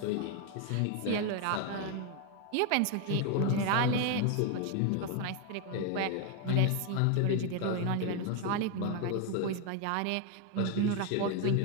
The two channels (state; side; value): different; both; correlation 0.01